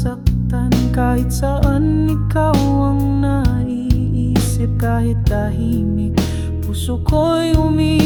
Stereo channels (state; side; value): identical; both; correlation 1.00